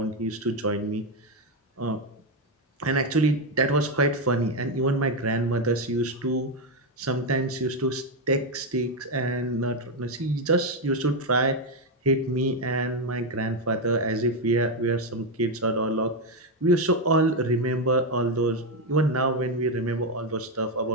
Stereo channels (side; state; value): both; normal; correlation 0.06